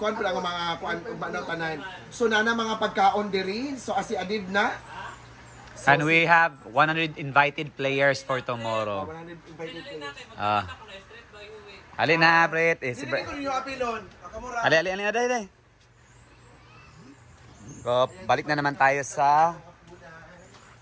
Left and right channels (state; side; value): identical; both; correlation 1.00